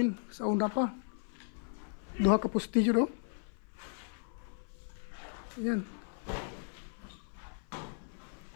sa una pa. Duha ka postilyo do. Ayan.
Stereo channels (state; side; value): silent; right; 54 dB below the other